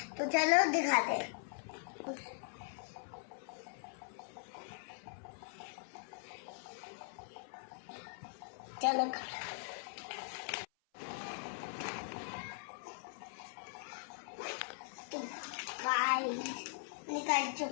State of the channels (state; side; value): silent; right; 51 dB below the other